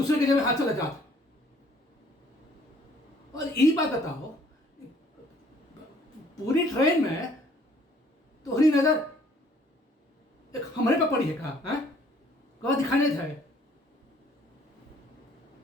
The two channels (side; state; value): both; normal; correlation 0.60